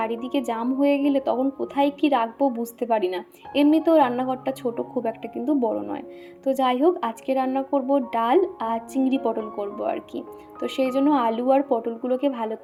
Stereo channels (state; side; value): identical; both; correlation 1.00